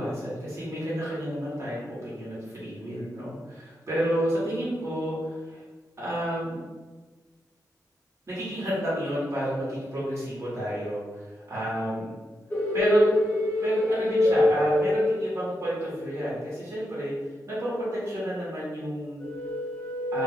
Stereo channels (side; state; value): both; normal; correlation 0.83